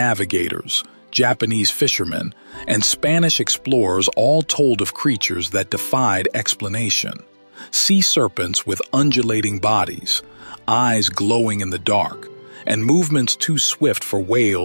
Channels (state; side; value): inverted; both; correlation -1.00